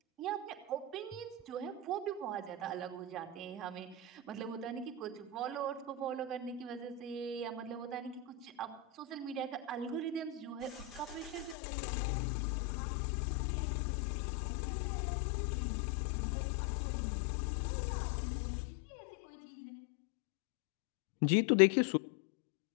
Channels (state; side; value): drops out; right; at 11.6 s